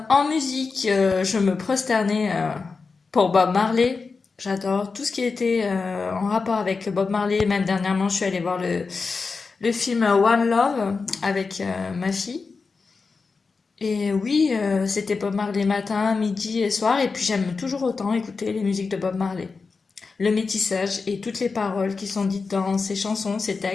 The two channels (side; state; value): right; quieter; 4.5 dB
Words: musique, je me prosternais pour Bob Marley. J'adore tout ce qui était en rapport avec Bob Marley. Même dernièrement, je suis allée voir le film One Love avec ma fille. Et oui, c'était Bob Marley matin, midi et soir. Et puis j'aime toujours autant écouter les musiques de Bob Marley. Le métissage et toutes les paroles qui sont dites dans ces chansons, ces